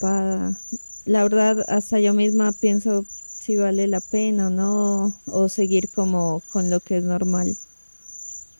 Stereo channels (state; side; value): inverted; both; correlation -1.00